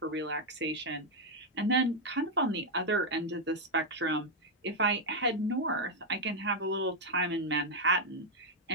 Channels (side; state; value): both; normal; correlation 0.00